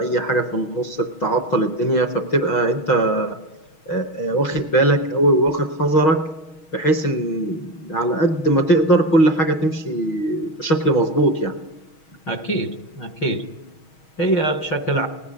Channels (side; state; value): right; late; 6.3 ms